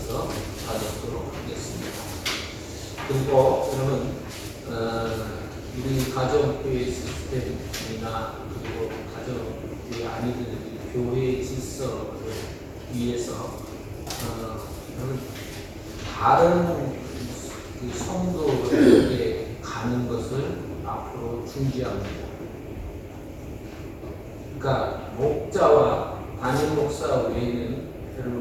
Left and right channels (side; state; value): both; identical; correlation 1.00